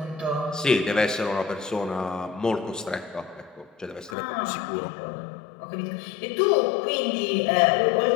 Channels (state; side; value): drops out; right; at 4.2 s